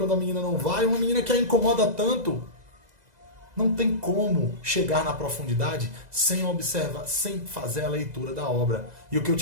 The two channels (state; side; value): late; left; 2.0 ms